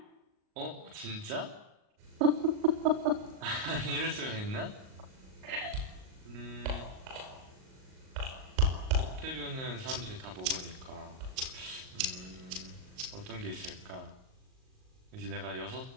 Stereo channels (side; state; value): left; late; 38 ms